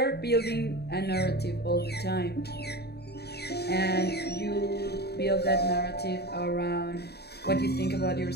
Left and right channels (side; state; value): right; late; 0.47 ms